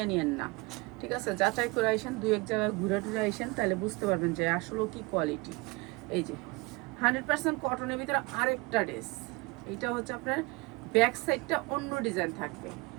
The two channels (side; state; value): left; quieter; 25.3 dB